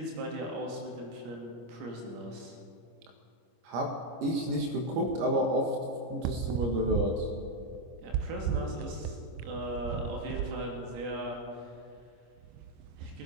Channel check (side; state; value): left; late; 25 ms